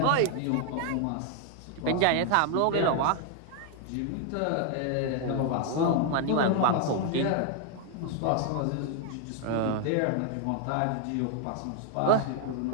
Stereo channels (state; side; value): different; both; correlation 0.00